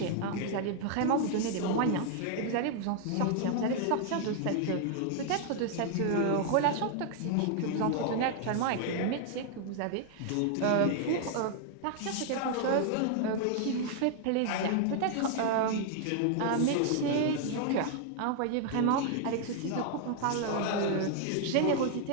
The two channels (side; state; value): both; different; correlation 0.00